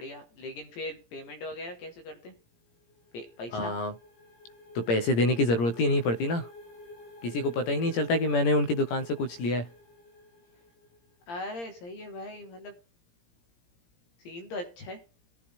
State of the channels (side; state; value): right; late; 17 ms